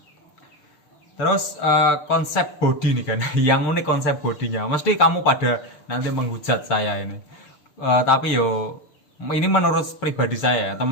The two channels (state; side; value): late; right; 6.7 ms